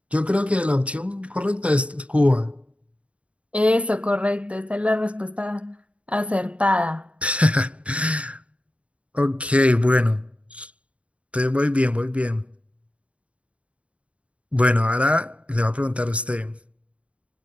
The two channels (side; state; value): left; late; 0.063 ms